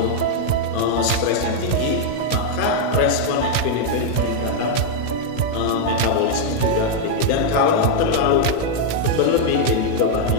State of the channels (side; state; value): right; late; 16 ms